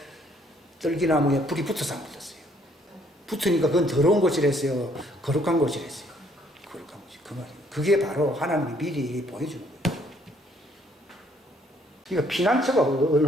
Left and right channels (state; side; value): normal; both; correlation 0.65